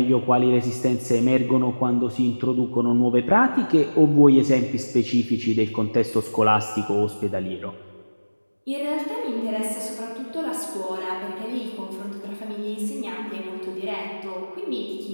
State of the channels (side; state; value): both; inverted; correlation -1.00